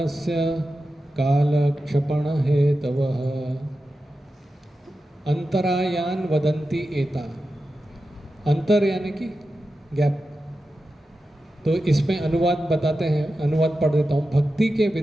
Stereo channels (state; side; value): normal; both; correlation 0.92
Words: कालक्षपण हेतवः। अंतरायान वदन्ति एता, अंतर यानी कि गैप। तो इसमें अनुवाद बताते हैं, अनुवाद पढ़ देता हूँ। भक्ति के